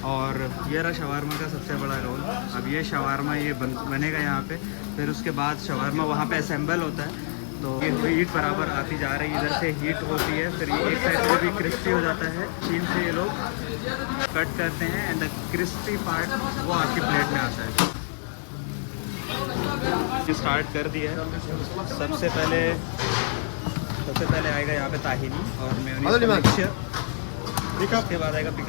और ये रहा शवारमा का सबसे बड़ा रोल। अब ये शवारमा ये बनेगा यहाँ पे, फिर उसके बाद शवारमा वहाँ पे असेंबल होता है। तो ये हीट बराबर आती जा रही है, इधर से हीट होती है, फिर ये इस साइड से भी क्रिस्पी हो जाता है। चीन से ये लोग कट करते हैं एंड द क्रिस्पी पार्ट वो आपकी प्लेट में आता है। ये स्टार्ट कर दिया है। सबसे पहले आएगा यहाँ पे ताहिनी और मेयोनीज मिक्सचर, उसके बाद आएगा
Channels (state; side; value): silent; right; 61 dB below the other